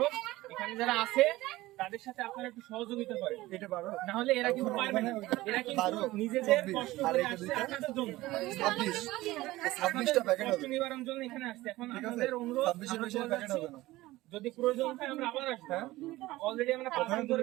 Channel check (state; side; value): quieter; left; 18.0 dB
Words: এখানে যারা আছে তাদের সাথে আপনারা একটু সহযোগিতা করেন, না হলে এরা কিন্তু পারবে না। এরা কিন্তু নিজেদের কষ্ট করে আসছে আপনাদের জন্য, 26টা প্যাকেট কষ্ট নিবারণের জন্য এখানে আসছে। এখন আপনাদের অনুরোধ যদি প্রয়োজন হয় আমরা আবার আসবো। অলরেডি আমরা 5 দিন